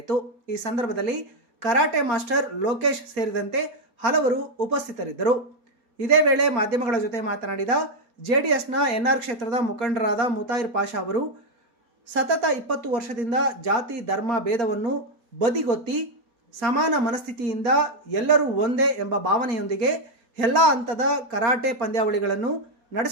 ಈ ಸಂದರ್ಭದಲ್ಲಿ ಕರಾಟೆ ಮಾಸ್ಟರ್ ಲೋಕೇಶ್ ಸೇರಿದಂತೆ ಹಲವರು ಉಪಸ್ಥಿತರಿದ್ದರು. ಇದೇ ವೇಳೆ ಮಾಧ್ಯಮಗಳ ಜೊತೆ ಮಾತನಾಡಿದ ಜೆಡಿಎಸ್ನ ಎನ್ಆರ್ ಕ್ಷೇತ್ರದ ಮುಖಂಡರಾದ ಮುತಾಯಿರ್ ಪಾಷಾ ಅವರು ಸತತ 20 ವರ್ಷದಿಂದ ಜಾತಿ ಧರ್ಮ ಭೇದವನ್ನು ಬದಿಗೊತ್ತಿ ಸಮಾನ ಮನಸ್ಥಿತಿಯಿಂದ ಎಲ್ಲರೂ ಒಂದೇ ಎಂಬ ಭಾವನೆಯೊಂದಿಗೆ ಎಲ್ಲ ಹಂತದ ಕರಾಟೆ ಪಂದ್ಯಾವಳಿಗಳನ್ನು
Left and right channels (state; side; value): late; left; 4.3 ms